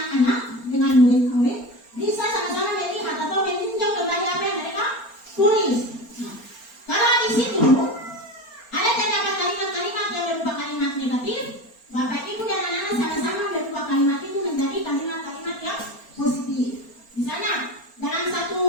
dengan murid-murid, bisa sama-sama melihat atau meninjau kembali apa yang mereka tulis. Nah, kalau di situ ada terdapat kalimat-kalimat yang berupa kalimat negatif, Bapak Ibu dan anak-anak sama-sama berubah kalimat itu menjadi kalimat-kalimat yang positif. Misalnya dalam satu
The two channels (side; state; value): right; late; 4.3 ms